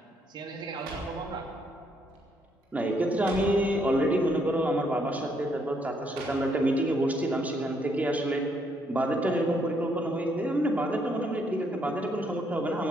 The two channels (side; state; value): both; normal; correlation 0.72